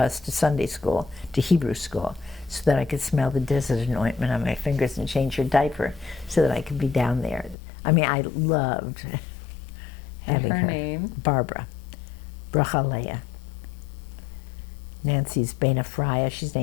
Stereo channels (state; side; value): drops out; right; at 7.6 s